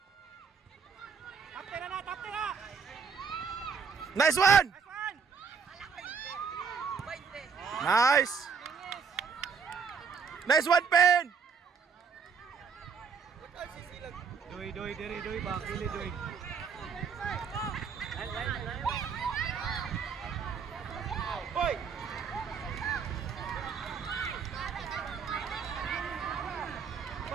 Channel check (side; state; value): left; quieter; 5.9 dB